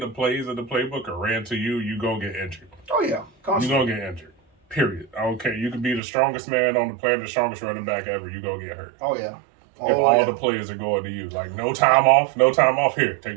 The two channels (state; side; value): drops out; left; at 6.0 s